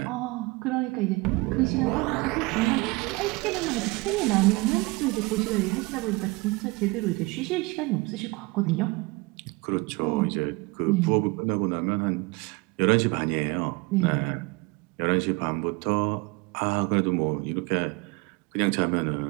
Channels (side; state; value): left; quieter; 24.8 dB